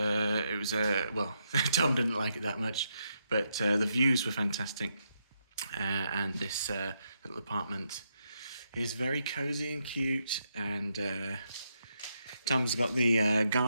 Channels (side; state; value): both; inverted; correlation -0.80